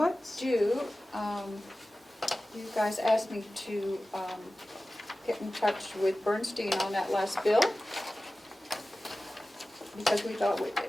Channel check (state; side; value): normal; both; correlation 0.96